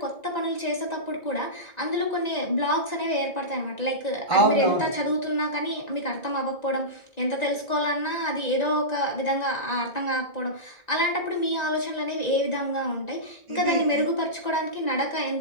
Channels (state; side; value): late; right; 1.9 ms